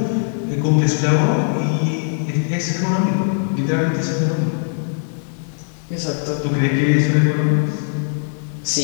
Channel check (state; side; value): silent; right; digital silence